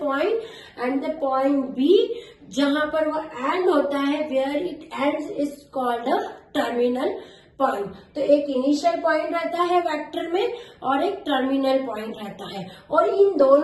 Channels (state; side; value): identical; both; correlation 1.00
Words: and the point B जहां पर वो एंड होता है where it ends is called the terminal point. तो एक इनिशियल पॉइंट रहता है वेक्टर में और एक टर्मिनल पॉइंट रहता है, और इन